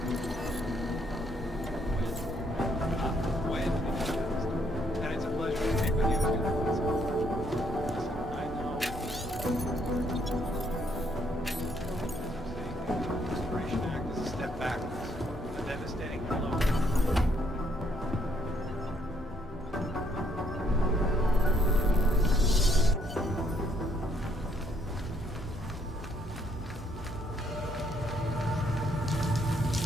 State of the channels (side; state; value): both; normal; correlation 0.70